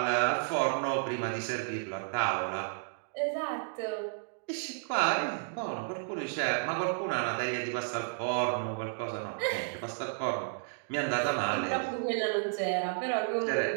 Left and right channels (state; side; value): silent; left; digital silence